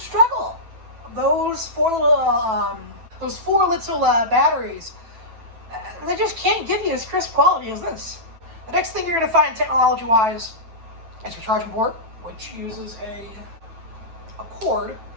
Those four little batteries, they just can't give you as crisp quality as this. The next thing you're going to find technology-wise is your charging port, which uses a cord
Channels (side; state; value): left; late; 9.1 ms